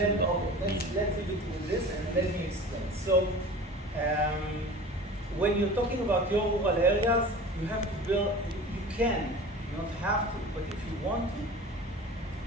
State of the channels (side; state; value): both; normal; correlation 0.38